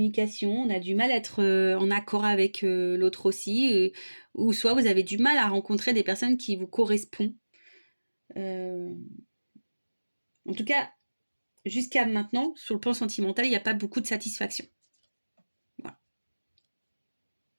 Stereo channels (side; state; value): both; inverted; correlation -1.00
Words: on a du mal à être en accord avec l'autre aussi, ou soit vous avez du mal à rencontrer des personnes qui vous correspondent. En tout cas, jusqu'à maintenant, sur le plan sentimental, il n'y a pas beaucoup de satisfaction. Voilà.